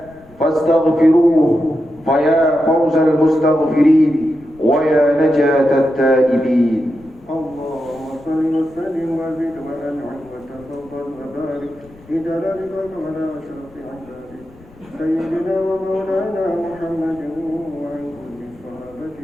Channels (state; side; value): noise; left; rumble, 24 dB below the sound